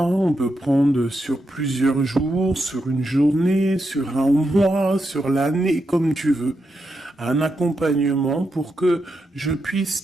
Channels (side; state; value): both; normal; correlation 0.85